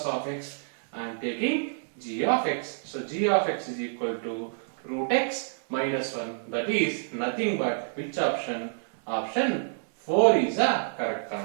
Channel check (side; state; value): left; silent; 59 dB below the other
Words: of x I am taking g of x. So g of x is equal to root x minus 1. That is nothing but which option? Option 4 is a correct